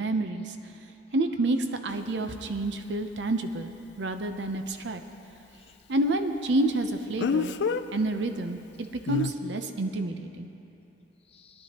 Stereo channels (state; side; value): normal; both; correlation 0.42